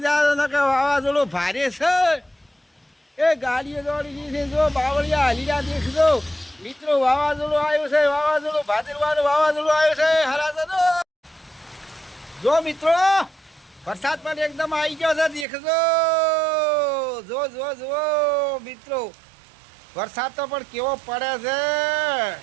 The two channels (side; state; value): left; drops out; at 15.5 s